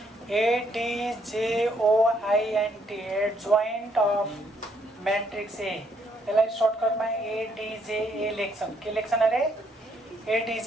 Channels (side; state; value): both; normal; correlation 0.71